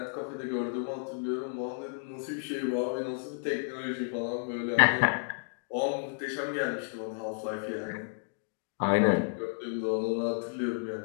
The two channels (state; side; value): silent; right; 57 dB below the other